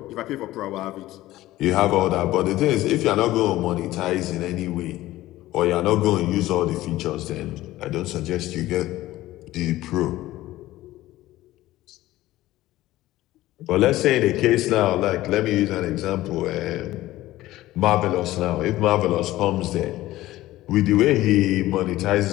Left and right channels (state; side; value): quieter; right; 16.1 dB